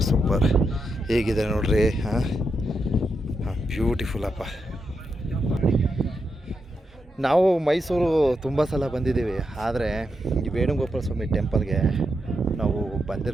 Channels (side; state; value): both; normal; correlation 0.85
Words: ಹೇಗಿದೆ ನೋಡ್ರಿ. ಬ್ಯೂಟಿಫುಲ್ ಅಪ್ಪ. ನಾವು ಮೈಸೂರು ತುಂಬ ಸಲ ಬಂದಿದ್ದೀವಿ, ಆದರೆ ಈ ವೇಣುಗೋಪಾಲ ಸ್ವಾಮಿ ಟೆಂಪಲ್ಗೆ ನಾವು